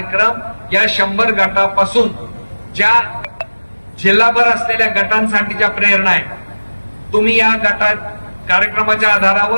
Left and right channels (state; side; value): inverted; both; correlation -1.00